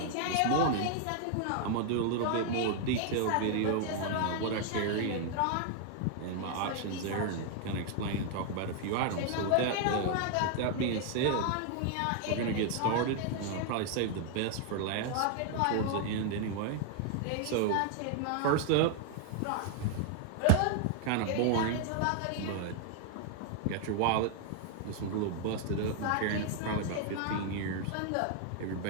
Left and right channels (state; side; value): different; both; correlation 0.00